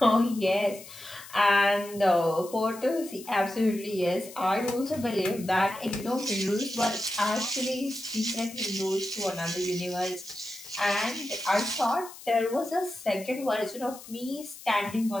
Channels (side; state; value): left; noise; hiss, 16 dB below the sound